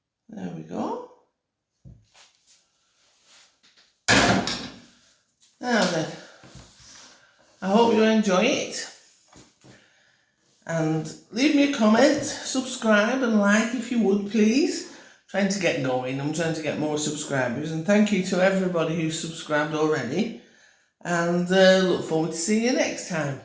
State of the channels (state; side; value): identical; both; correlation 1.00